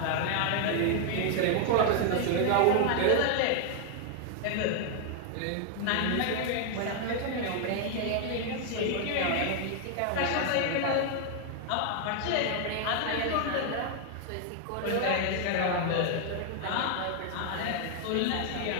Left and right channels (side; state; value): both; different; correlation 0.00